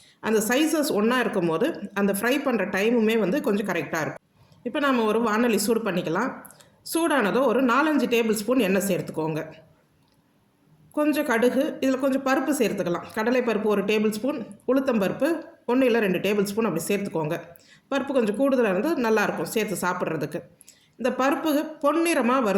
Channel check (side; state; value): both; identical; correlation 1.00